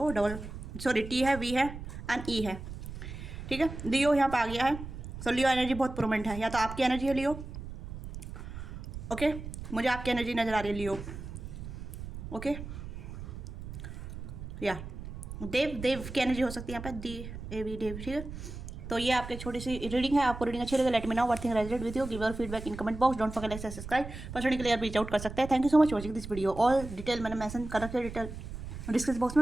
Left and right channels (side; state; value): right; noise; rumble, 10 dB below the sound